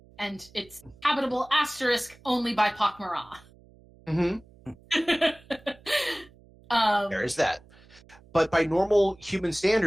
and it's habitable * only by Pakmara. There is that. But by normal human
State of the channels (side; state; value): right; noise; hum, 26 dB below the sound